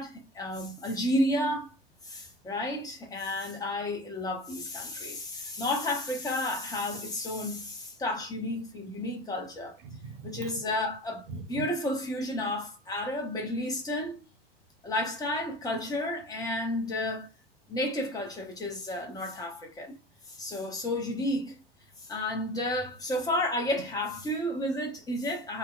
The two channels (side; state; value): both; normal; correlation 0.33